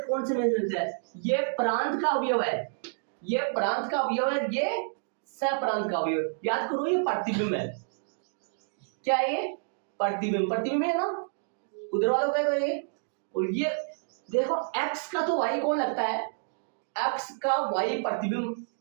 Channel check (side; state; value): left; silent; digital silence